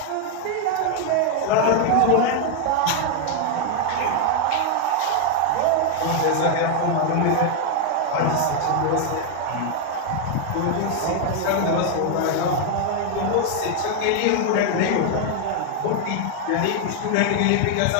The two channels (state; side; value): different; both; correlation 0.00